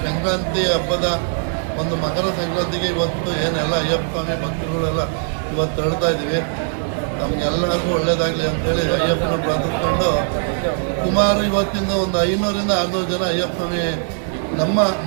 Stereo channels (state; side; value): silent; left; 66 dB below the other